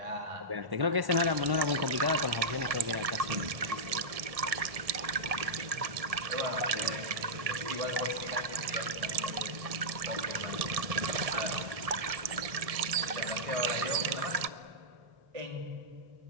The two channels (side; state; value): left; late; 1.6 ms